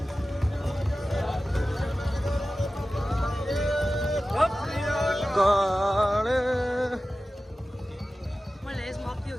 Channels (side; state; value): both; normal; correlation 0.95